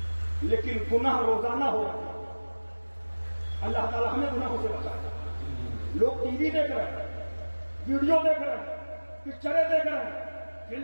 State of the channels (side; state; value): both; inverted; correlation -1.00